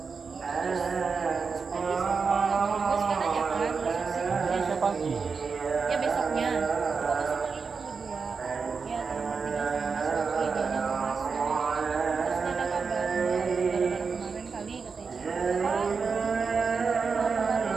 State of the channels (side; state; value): left; quieter; 5.2 dB